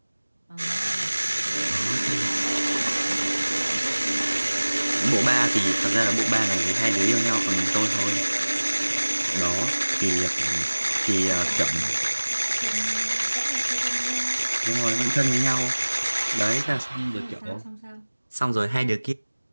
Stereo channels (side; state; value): both; inverted; correlation -1.00